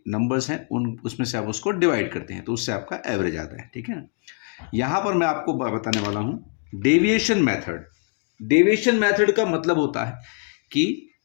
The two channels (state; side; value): quieter; right; 39.8 dB